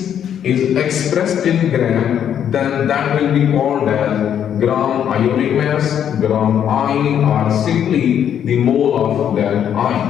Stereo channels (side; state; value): right; quieter; 9.3 dB